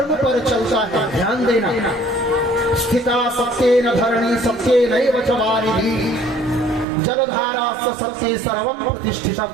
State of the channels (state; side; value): drops out; left; at 6.9 s